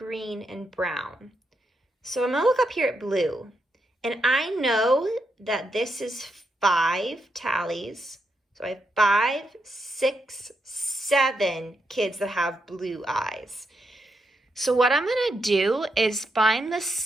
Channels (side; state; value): both; normal; correlation 0.82